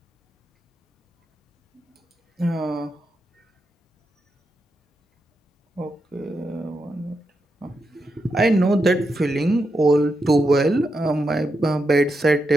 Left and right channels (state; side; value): normal; both; correlation 0.85